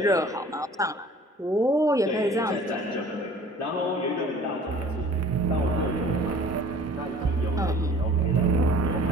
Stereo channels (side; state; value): both; normal; correlation 0.48